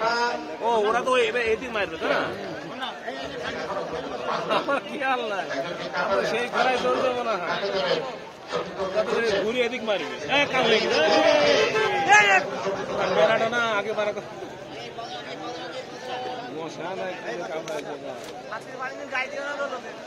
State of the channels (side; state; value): both; identical; correlation 1.00